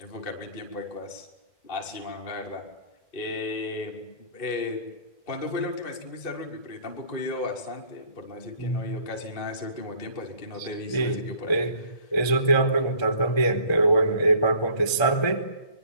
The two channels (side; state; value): right; late; 1.3 ms